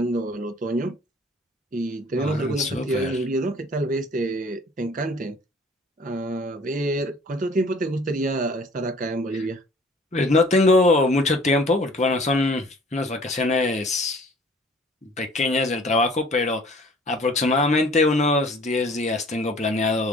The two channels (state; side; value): normal; both; correlation 0.52